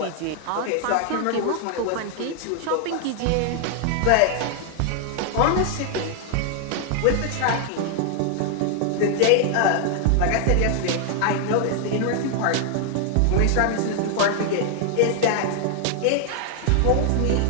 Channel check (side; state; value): both; different; correlation 0.00